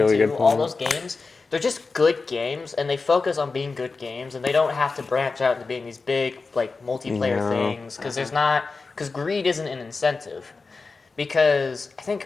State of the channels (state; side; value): quieter; right; 4.2 dB